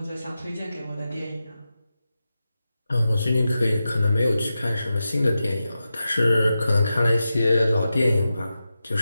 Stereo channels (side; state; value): both; inverted; correlation -0.91